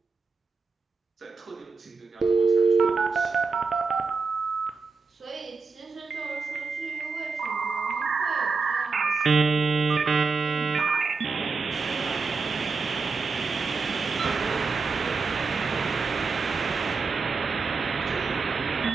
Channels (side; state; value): left; quieter; 4.7 dB